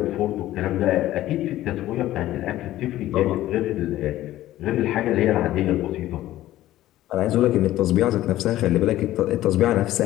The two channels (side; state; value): right; quieter; 14.6 dB